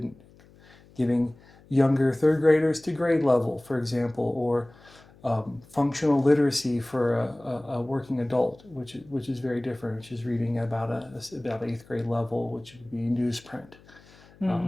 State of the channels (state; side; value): noise; left; hum, 26 dB below the sound